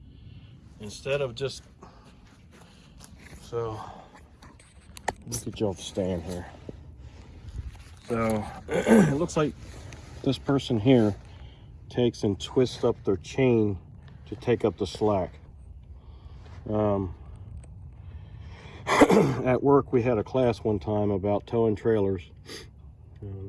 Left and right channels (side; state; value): both; identical; correlation 1.00